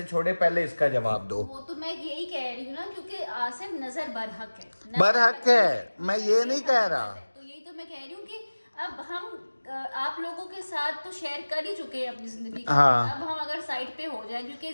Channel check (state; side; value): inverted; both; correlation -1.00